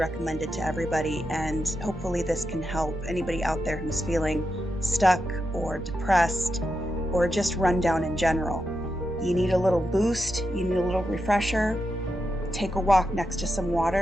it to everybody, and hopefully this can help anybody out there who's feeling stuck or depressed or just run down in general. You need a little boost, you need a little refresher. Take a walk next to some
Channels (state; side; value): normal; both; correlation 0.87